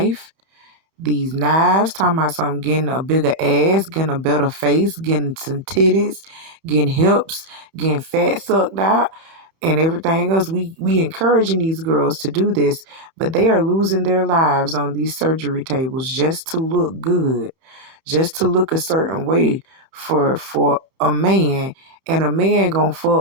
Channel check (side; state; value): left; late; 30 ms